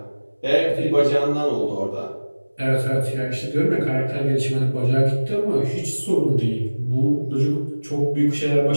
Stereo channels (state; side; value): inverted; both; correlation -1.00